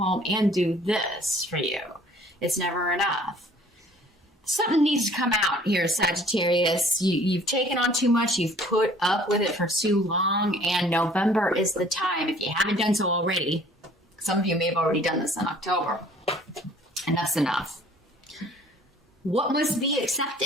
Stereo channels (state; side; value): normal; both; correlation 0.54